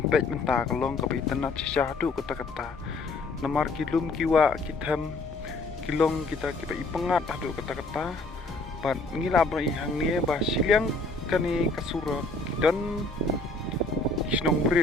mentah kalong kaba itenat sishadu kata-kata namar kilum kiwa kitam kilong kita kiba ipengat adu kata-kata ban ngila bro ihang ni ba siliang kani kasura kidon Kisnong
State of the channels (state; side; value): quieter; right; 3.2 dB